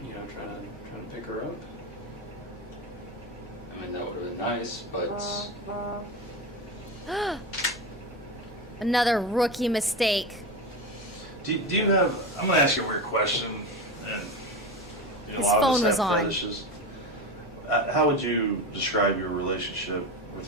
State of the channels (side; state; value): both; normal; correlation 0.21